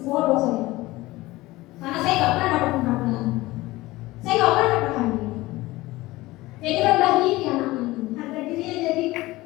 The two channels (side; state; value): right; quieter; 19.2 dB